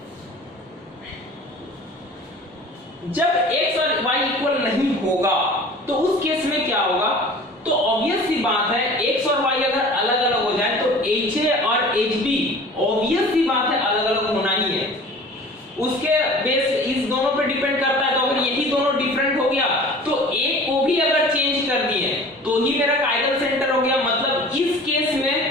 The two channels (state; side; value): normal; both; correlation 0.43